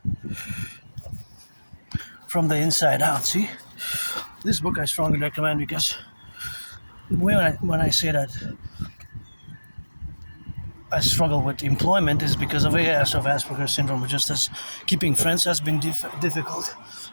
from the Inside Out. See, this book I strongly recommend, because when I say that I struggle with employment is because of AS, of Asperger's syndrome. Just as keeping friends has been difficult,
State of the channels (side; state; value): both; inverted; correlation -1.00